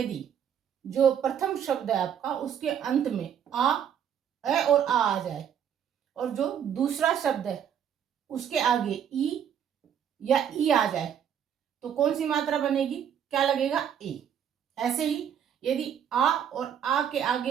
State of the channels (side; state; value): left; quieter; 8.8 dB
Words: जो प्रथम शब्द है आपका उसके अंत में ए और आ जाए, और जो दूसरा शब्द है उसके आगे ई या ई आ जाए, तो कौन सी मात्रा बनेगी, क्या लगेगा, ए। ऐसे ही यदि आ और आ के